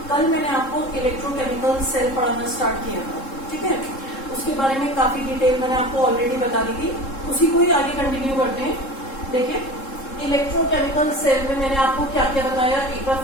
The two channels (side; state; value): right; late; 3.7 ms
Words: कल मैंने आपको इलेक्ट्रोकेमिकल सेल पढ़ाना स्टार्ट किया था, ठीक है। उसके बारे में काफी डिटेल मैंने आपको ऑलरेडी बता दी थी, उसी को ही आगे कंटिन्यू करते हैं। देखिए इलेक्ट्रोकेमिकल सेल में मैंने आपको क्या क्या बताया, एक बार